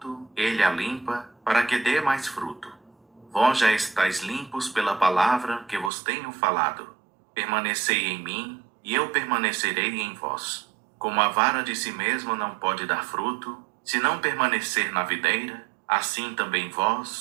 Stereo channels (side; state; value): left; drops out; at 5.9 s